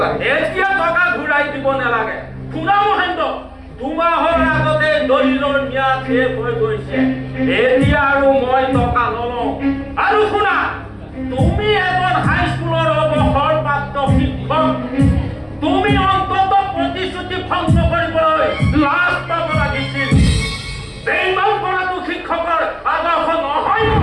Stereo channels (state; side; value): identical; both; correlation 1.00